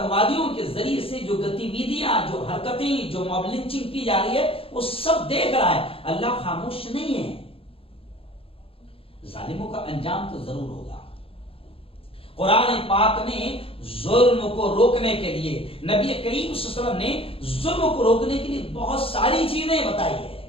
کے ذریعے سے جو گتیویدیاں، جو حرکتیں، جو موب لنچنگ کی جا رہی ہے، وہ سب دیکھ رہا ہے۔ اللہ خاموش نہیں ہے، ظالموں کا انجام تو ضرور ہوگا۔ قرآن پاک نے ظلم کو روکنے کے لیے، نبی کریم صلی اللہ علیہ وسلم نے ظلم کو روکنے کے لیے بہت ساری چیزیں بتائی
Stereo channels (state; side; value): late; right; 0.27 ms